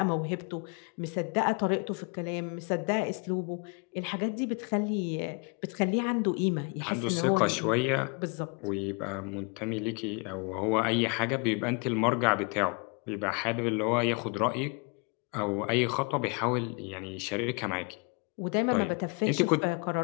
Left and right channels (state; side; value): quieter; right; 33.8 dB